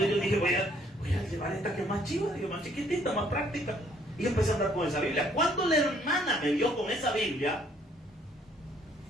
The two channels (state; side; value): normal; both; correlation 0.64